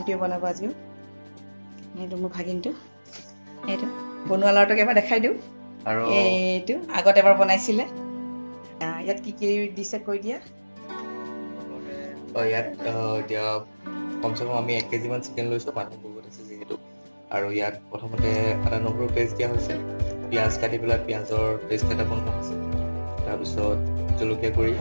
বনাব আজিও। এইটো মোৰ ভাগিনটো। এইটো বনোৱা লৰাটোক এবাৰ দেখাই দিওঁ। আৰু এইটো আগত এবাৰ বনাইছিলে। ইয়াত কি দিছে কৈ দিয়া। ইয়াত এতিয়া কমচে কম আমি 1 কেজি মান চিকেন লৈছোঁ, মানুহ বহুত আছে যিহেতু। আৰু ইয়াত প্ৰথমতে আদা নহৰু পেষ্ট দিয়া হৈছে, পিঁয়াজ কাটি পেলাই পিঁয়াজৰ পেষ্ট এটা বনোৱা হৈছে, তাৰপিছত জলকীয়া গুড়ি,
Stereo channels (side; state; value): both; inverted; correlation -1.00